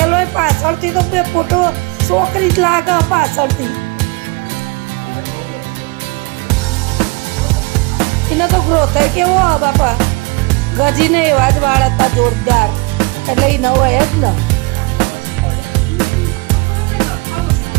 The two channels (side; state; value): left; quieter; 26.9 dB